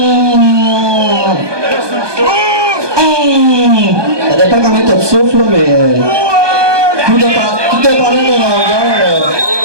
dépend comment t'as de souffle, là, mais tout dépendant de la longueur,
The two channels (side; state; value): left; late; 1.2 ms